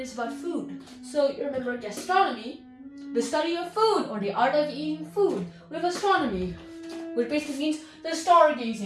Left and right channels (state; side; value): identical; both; correlation 1.00